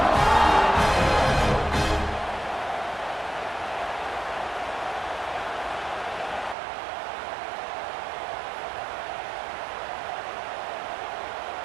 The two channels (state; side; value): drops out; left; at 6.6 s